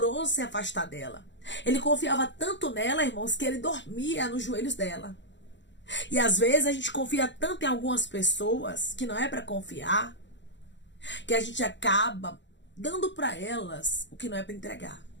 se afastar dela. Ele confiava tanto nela, irmãos, que ele dormia nos joelhos dela. E às vezes a gente confia tanto em algumas pessoas que não é para confiar, que a gente acaba dando para elas o que não é para entregar.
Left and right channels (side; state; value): right; late; 0.53 ms